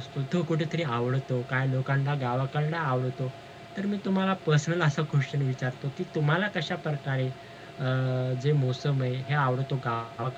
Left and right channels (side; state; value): both; identical; correlation 1.00